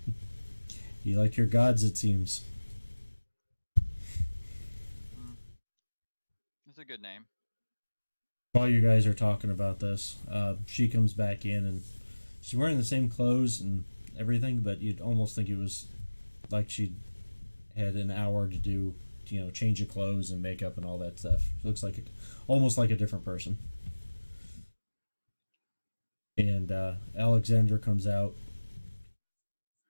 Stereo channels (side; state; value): both; inverted; correlation -1.00